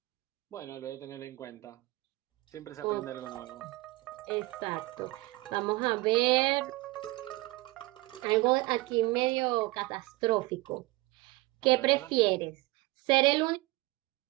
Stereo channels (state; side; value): quieter; left; 21.6 dB